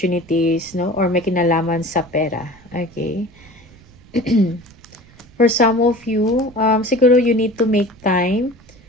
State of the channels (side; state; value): right; noise; rumble, 25 dB below the sound